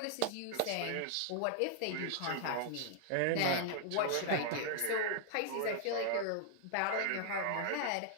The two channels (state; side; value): different; both; correlation 0.00